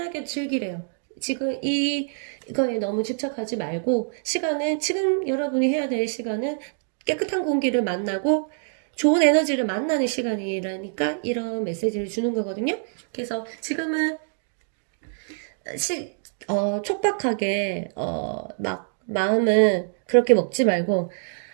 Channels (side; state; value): left; silent; digital silence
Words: 즐기래요. 지금 이거에 너무 집착하지 말고 지금 여러분이 해야 될 시간은 깨끗한 공기를 만나고 좋은 에너지를 만나는 시간이라니까 이런 메시지를 주는 거거든요. 그래서 지금은 촉박하게 막 마음은 그렇게 먹지 말고